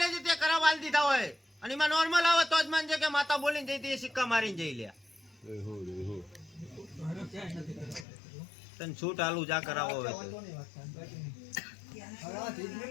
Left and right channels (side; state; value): right; drops out; at 8.1 s